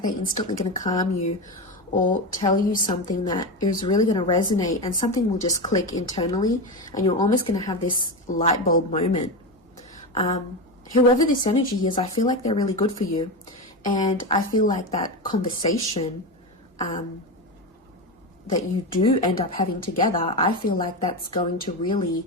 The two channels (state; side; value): normal; both; correlation 0.17